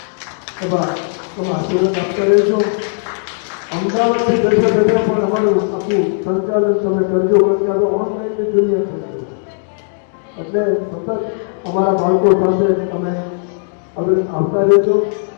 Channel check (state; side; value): silent; right; digital silence